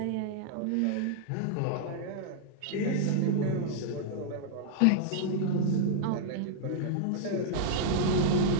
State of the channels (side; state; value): both; different; correlation -0.01